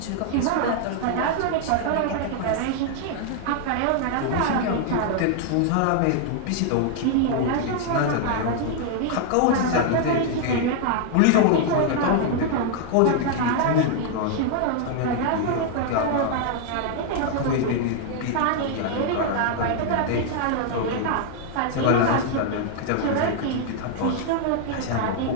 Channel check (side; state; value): both; different; correlation 0.00